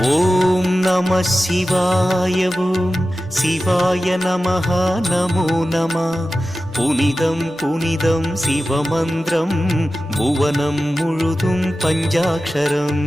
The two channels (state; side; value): normal; both; correlation 0.94